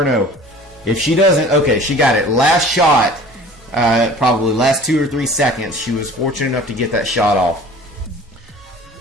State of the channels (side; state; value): both; normal; correlation 0.45